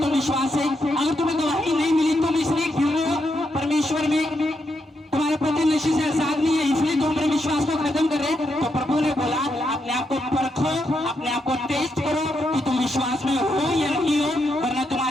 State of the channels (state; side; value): normal; both; correlation 0.82